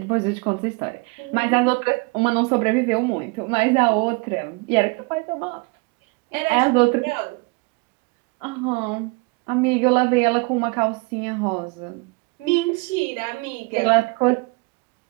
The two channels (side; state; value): left; quieter; 28.1 dB